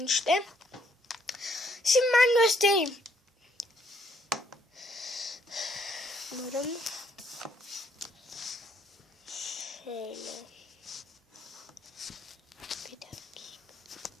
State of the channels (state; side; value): normal; both; correlation 0.69